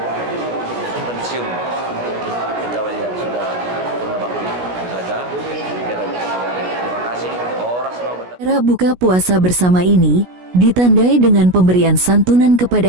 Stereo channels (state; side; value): late; left; 16 ms